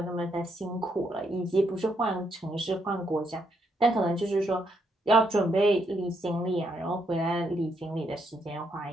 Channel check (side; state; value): both; normal; correlation 0.76